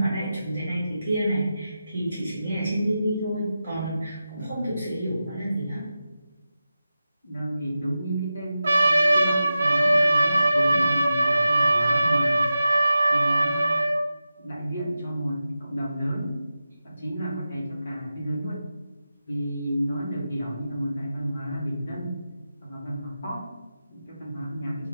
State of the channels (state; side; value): inverted; both; correlation -0.92